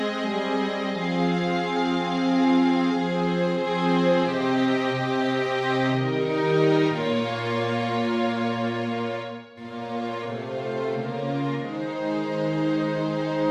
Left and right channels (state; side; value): identical; both; correlation 1.00